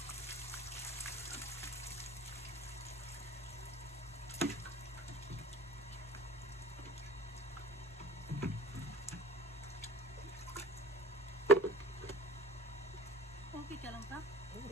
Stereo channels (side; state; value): both; normal; correlation 0.44